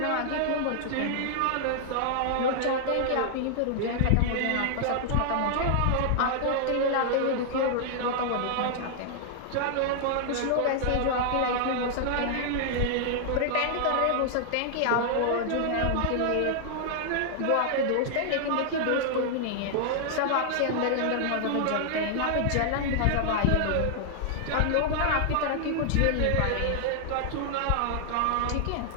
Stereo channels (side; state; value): both; different; correlation -0.01